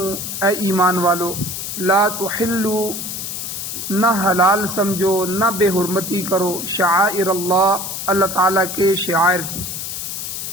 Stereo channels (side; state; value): left; noise; hiss, 6 dB below the sound